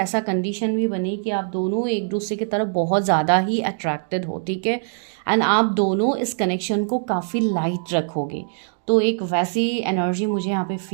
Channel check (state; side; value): silent; left; 62 dB below the other